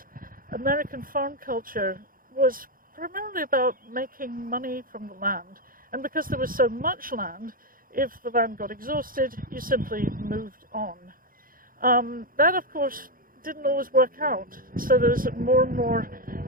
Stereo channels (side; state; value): left; late; 0.41 ms